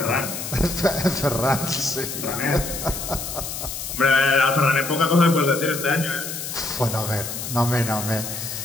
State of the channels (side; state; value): left; noise; hiss, 7 dB below the sound